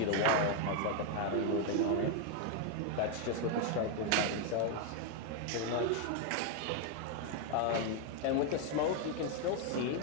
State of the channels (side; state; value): both; different; correlation 0.01